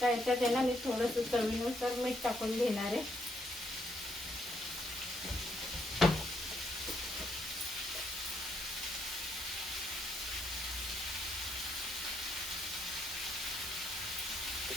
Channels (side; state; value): both; normal; correlation 0.74